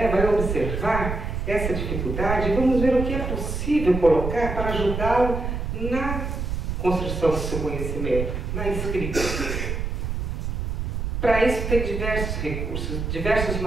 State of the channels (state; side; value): noise; right; rumble, 3 dB below the sound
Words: vai observar essa dificuldade e vamos ver o que é possível colocar para ajudá-lo na construção do seu conhecimento, na escrita. Para isso tem diversos recursos, diversos